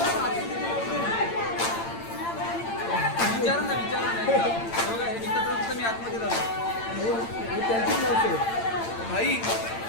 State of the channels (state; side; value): late; right; 8.8 ms